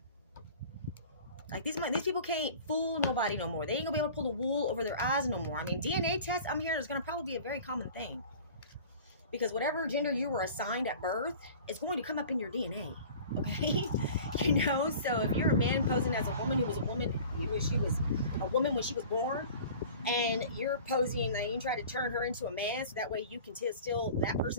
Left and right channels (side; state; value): both; inverted; correlation -0.42